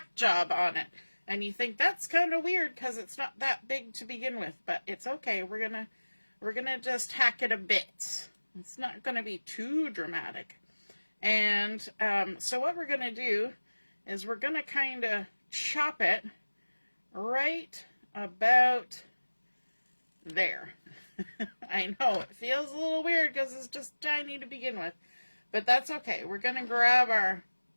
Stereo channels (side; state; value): both; inverted; correlation -1.00